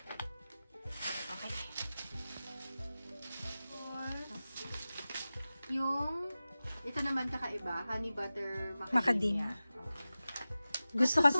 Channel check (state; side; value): inverted; both; correlation -0.95